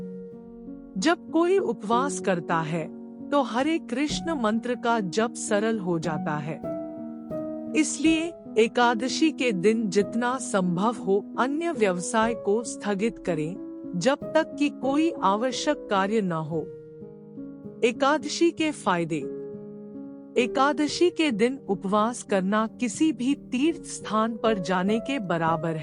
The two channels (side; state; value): both; identical; correlation 1.00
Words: जब कोई उपवास करता है तो हरे कृष्ण मंत्र का जप सरल हो जाता है। इसलिए एकादशी के दिन जितना संभव हो अन्य व्यवसाय को स्थगित करें, जब तक कि कोई आवश्यक कार्य न हो। एकादशी के फायदे। एकादशी के दिन उपवास करना किसी भी तीर्थ स्थान पर जाने के बराबर